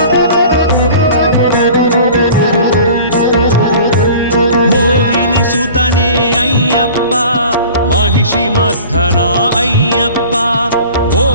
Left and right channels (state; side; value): inverted; both; correlation -0.43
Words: మోహిని సుతనే అయ్యప్ప మహిషి మర్ధన అయ్యప్ప